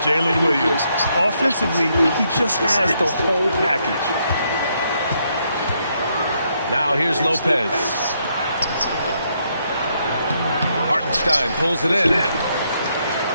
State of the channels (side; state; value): both; inverted; correlation -0.75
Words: Williams. Offensively, he just has the whole package. Now here's Lopez. Hartenstein pulls it in.